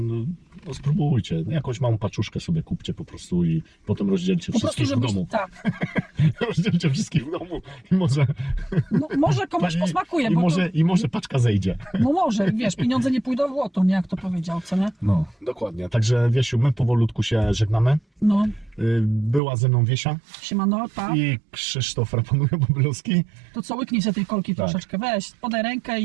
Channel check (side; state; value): left; drops out; at 19.4 s